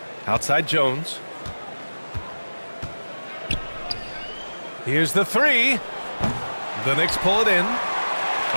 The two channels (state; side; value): inverted; both; correlation -1.00